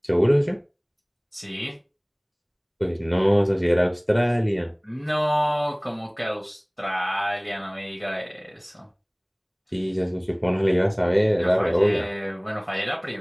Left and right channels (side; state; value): both; identical; correlation 1.00